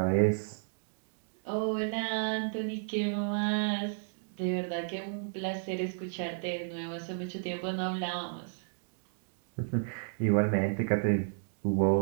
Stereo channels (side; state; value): left; silent; digital silence